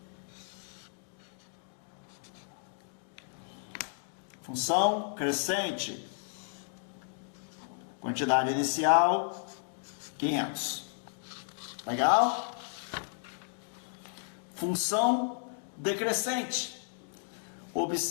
Função crescente. Quantidade inicial, 500. Legal? Função decrescente.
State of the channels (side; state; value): right; silent; digital silence